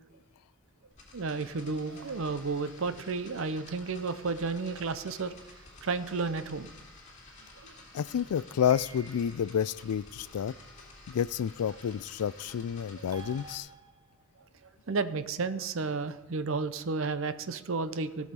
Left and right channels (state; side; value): normal; both; correlation -0.07